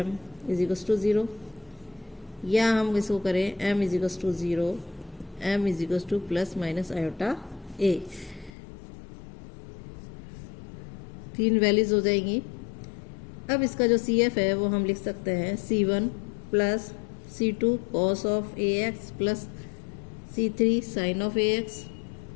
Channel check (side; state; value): right; drops out; at 8.5 s